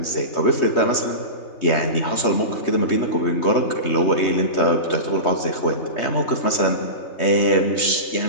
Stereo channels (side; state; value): right; late; 3.2 ms